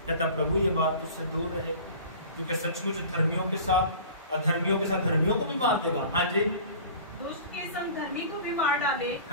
कहता प्रभु ये बात तुझसे दूर रहे, क्योंकि सचमुच धर्मियों के साथ अधर्मियों के साथ धर्मियों को भी मार देगा। हाँ जी। दुष्ट के संग धर्मी को भी मार डाले।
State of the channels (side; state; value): both; inverted; correlation -0.42